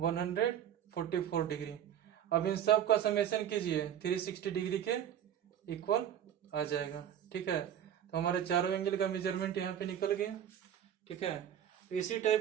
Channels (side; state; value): left; quieter; 9.9 dB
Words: डिग्री। अब इन सब का समेशन कीजिए, 360 डिग्री के इक्वल आ जाएगा। ठीक है, तो हमारे चारों एंगल का मेजरमेंट यहाँ पे निकल गया। ठीक है, तो इसी